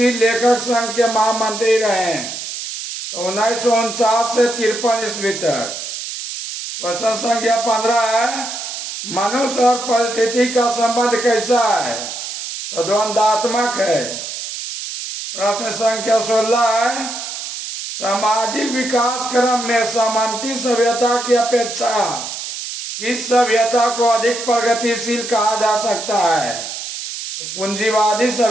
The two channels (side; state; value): right; noise; hiss, 7 dB below the sound